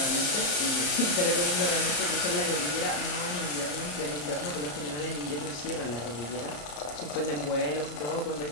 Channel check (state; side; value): late; right; 34 ms